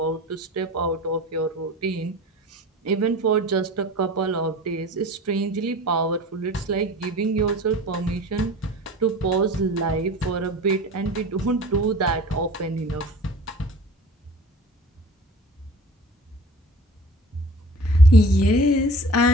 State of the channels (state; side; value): normal; both; correlation 0.41